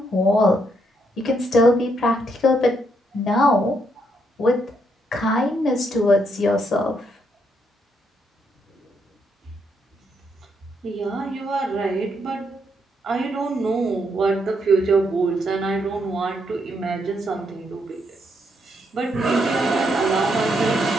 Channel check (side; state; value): both; normal; correlation 0.76